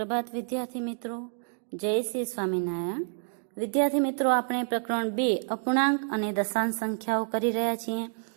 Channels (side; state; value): left; silent; 59 dB below the other